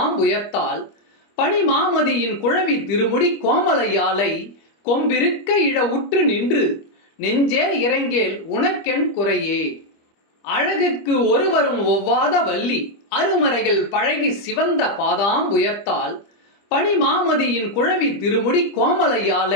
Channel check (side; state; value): right; late; 25 ms